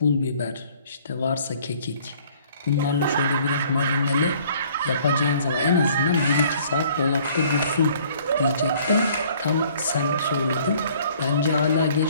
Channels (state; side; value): inverted; both; correlation -0.57